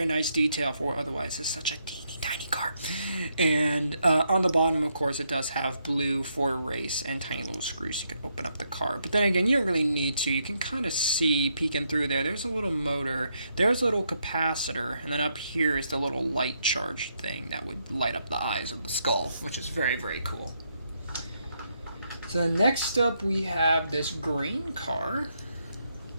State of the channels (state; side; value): inverted; both; correlation -0.77